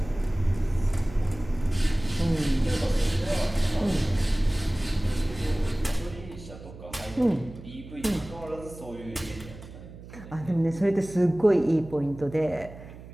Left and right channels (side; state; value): right; noise; hum, 16 dB below the sound